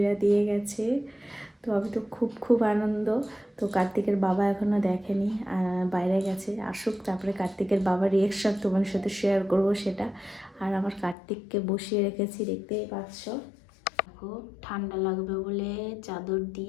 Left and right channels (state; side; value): drops out; right; at 11.2 s